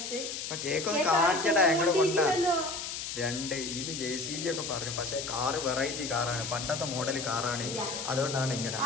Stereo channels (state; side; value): noise; left; hiss, 5 dB below the sound